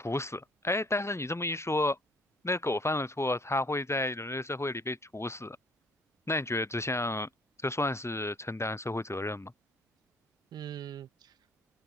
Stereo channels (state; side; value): normal; both; correlation 0.57